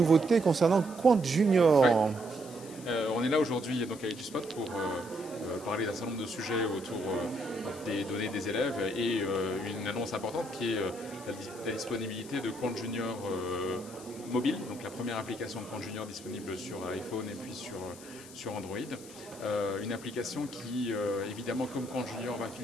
concernant Quant Oui. Junior. On est là aujourd'hui donc avec Spot pour parler d'un certain nombre de sujets autour des données des élèves et une annonce importante qui est la disponibilité de Quant Junior mobile, donc la première application de Quant Junior disponible sur iPhone et puis sur Android. Une application qui, évidemment, comme Quant Junior, va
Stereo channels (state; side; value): noise; left; hiss, 18 dB below the sound